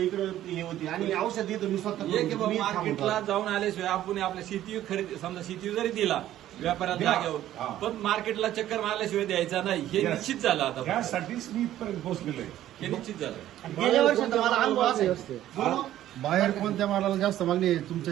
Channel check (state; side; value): quieter; left; 12.9 dB